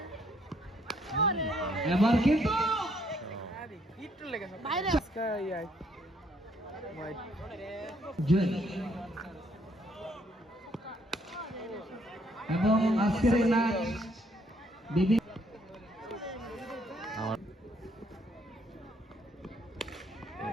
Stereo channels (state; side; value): normal; both; correlation 0.68